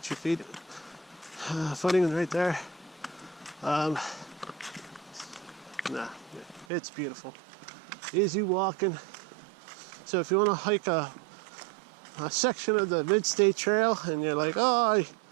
your feet. Footing right there. Nah, it's beautiful. Easy walking. So if you want to hike a section of the Mid-State Trail and you're like, oh,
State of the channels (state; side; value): drops out; left; at 6.7 s